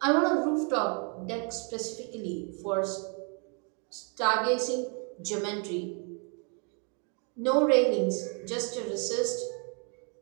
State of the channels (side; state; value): left; quieter; 37.7 dB